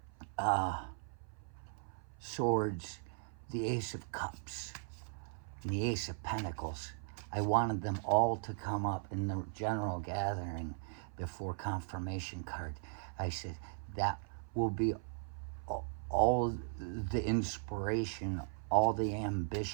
swords, the ace of cups, and the ace of pentacles. I wanted them all to come up in the general gathering before confirmation card. I said, that will be all the inspiration, all the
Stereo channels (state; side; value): silent; left; 52 dB below the other